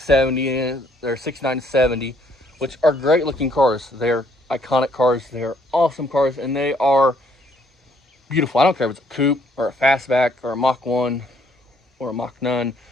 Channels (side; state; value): both; normal; correlation 0.66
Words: they're 69 to 70, which are great looking cars. They're iconic cars. They're awesome cars, and they are beautiful. I don't care if it's a coupe or a fastback or a Mach 1 or a Mach 9.